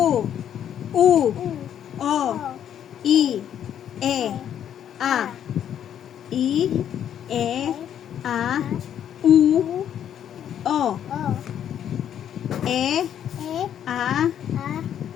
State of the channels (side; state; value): right; quieter; 9.8 dB